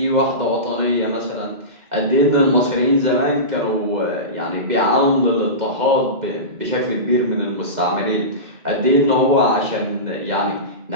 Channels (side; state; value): left; late; 2.1 ms